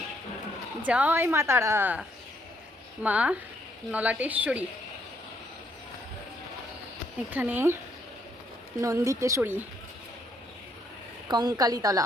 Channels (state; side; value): normal; both; correlation 0.71